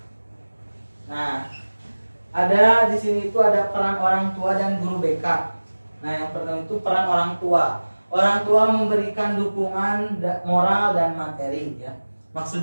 Nah, ada di sini itu ada peran orang tua dan guru BK. Nah, yang pertama itu peran orang tua. Orang tua memberikan dukungan moral dan materi ya.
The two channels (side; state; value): both; inverted; correlation -1.00